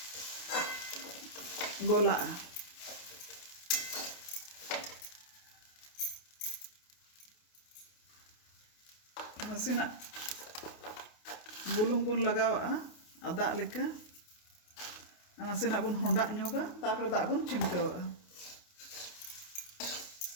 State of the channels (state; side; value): late; right; 28 ms